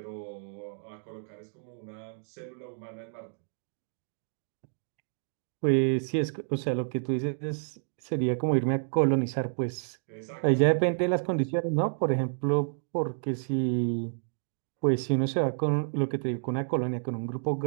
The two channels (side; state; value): left; silent; digital silence